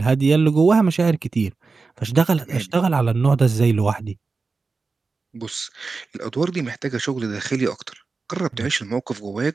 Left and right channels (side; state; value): left; quieter; 4.2 dB